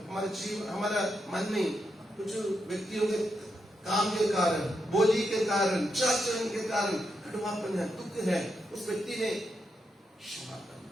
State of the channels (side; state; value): both; normal; correlation 0.83